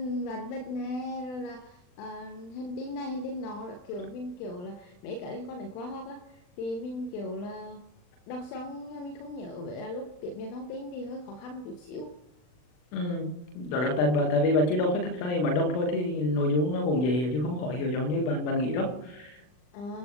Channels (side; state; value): right; late; 40 ms